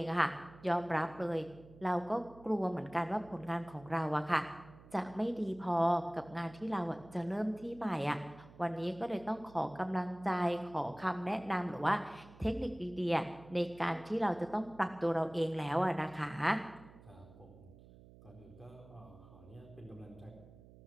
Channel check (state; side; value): noise; right; hum, 21 dB below the sound